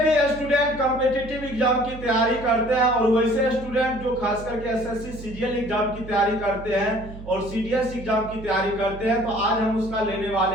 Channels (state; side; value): noise; right; hum, 13 dB below the sound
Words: भी student competitive exam की तैयारी करते हैं और वैसे स्टूडेंट जो खास करके एसएससी सीजीएल एग्जाम की तैयारी करते हैं और सीडीएस एग्जाम की तैयारी करते हैं, तो आज हम उसका लेने वाले